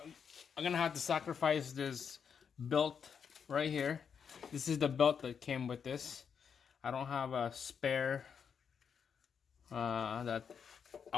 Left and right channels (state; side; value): quieter; right; 6.9 dB